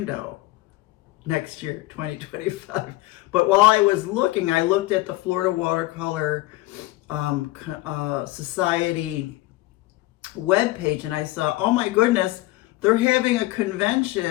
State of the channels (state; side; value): quieter; right; 19.0 dB